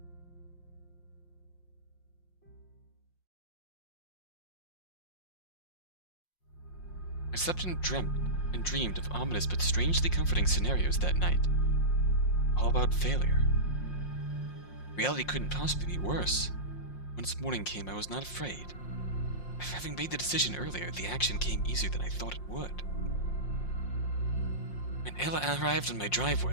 I slept and dreamed of ominous but strangely comforting scenarios that night. All about failure. Reality couldn't possibly be worse. Once morning came, I was not afraid. Having made the decision earlier, the action came easier than I thought it would. When Ella arrived on my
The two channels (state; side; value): late; right; 5.6 ms